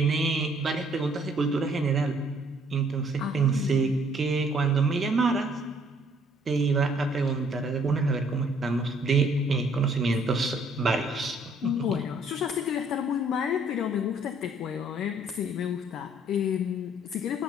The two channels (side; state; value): both; normal; correlation 0.62